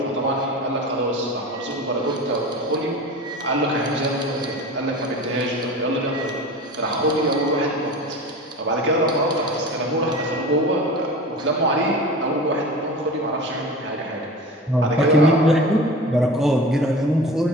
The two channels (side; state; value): both; normal; correlation 0.34